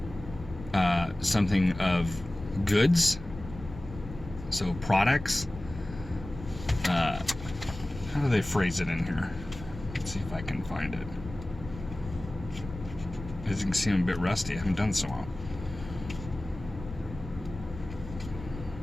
something of goods, so products. How do they phrase it in here? Let's see if I can find it. As you can see, I'm a bit rusty. I haven't done so well.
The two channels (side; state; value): left; noise; rumble, 12 dB below the sound